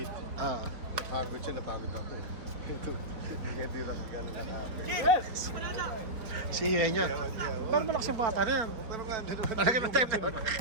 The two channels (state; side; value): late; left; 4.2 ms